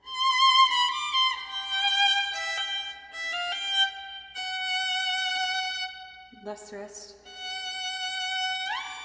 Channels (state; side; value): identical; both; correlation 1.00